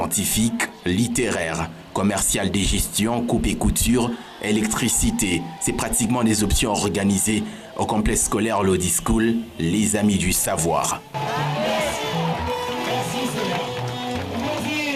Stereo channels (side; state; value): both; identical; correlation 1.00